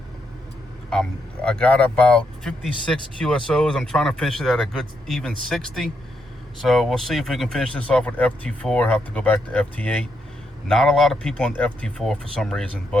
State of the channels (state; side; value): normal; both; correlation 0.80